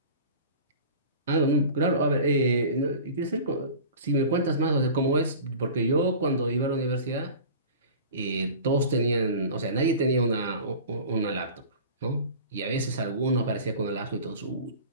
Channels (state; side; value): inverted; both; correlation -0.38